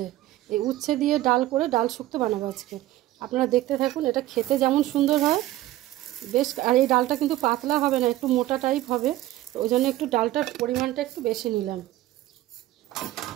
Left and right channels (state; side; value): quieter; left; 15.5 dB